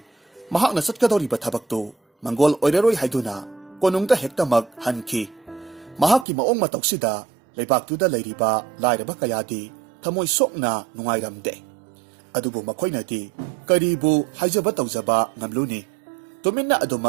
mahakna chatkadoriba thabaktu mangol oiraroi haiduna konungda hektamak hanki. Mahakki maong matoksida leibaktuda leiriba lairaba kayadi thamoi sokna nungairamde. Adubu makoinati karibu haijaba tawjaba ngamluni tuminna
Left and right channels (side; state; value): left; drops out; at 6.2 s